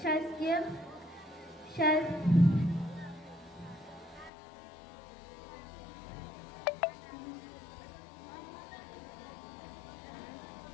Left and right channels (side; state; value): right; drops out; at 4.3 s